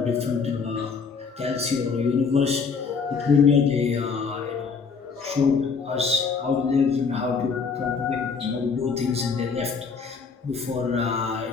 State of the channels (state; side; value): quieter; right; 5.4 dB